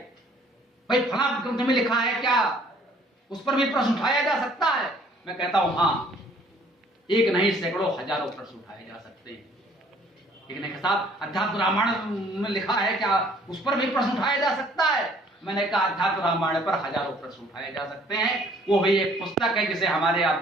भाई फला ग्रंथ में लिखा है क्या, उस पर भी प्रश्न उठाया जा सकता है। मैं कहता हूं हाँ, एक नहीं सैकड़ों हजारों प्रश्न उठाए जा सकते हैं। एक नहीं साहब अध्यात्म रामायण में लिखा है क्या, उस पर भी प्रश्न उठाया जा सकता है। मैंने कहा अध्यात्म रामायण पर हजारों प्रश्न उठाए जा सकते हैं, वो भी एक पुस्तक है जिसे हमारे आप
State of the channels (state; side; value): normal; both; correlation 0.58